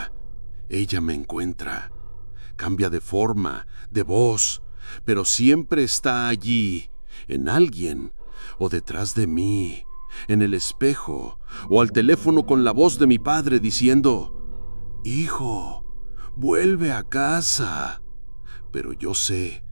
ella me encuentra. Cambia de forma, de voz, pero siempre está allí, en alguien, o detrás de mí, en el espejo, o al teléfono con la voz de mi padre diciendo: Hijo, vuelve a casa. Pero yo sé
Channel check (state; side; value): inverted; both; correlation -1.00